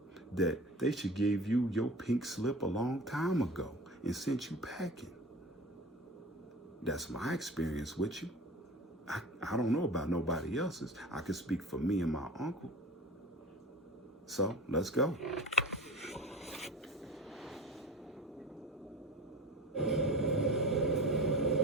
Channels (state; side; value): normal; both; correlation 0.36